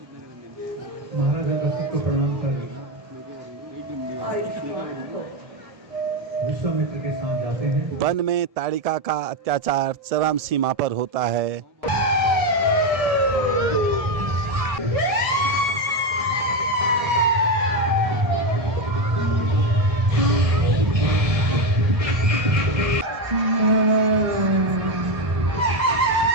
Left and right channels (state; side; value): late; left; 1.7 ms